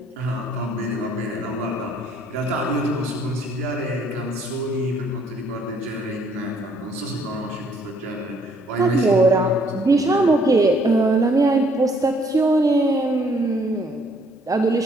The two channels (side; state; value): both; normal; correlation 0.65